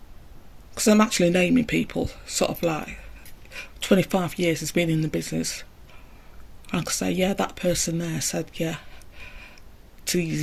Because I'm actually naming people, sort of like 25 years has been in the business. I can say, yeah, that person there said, yeah, to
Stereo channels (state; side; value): identical; both; correlation 1.00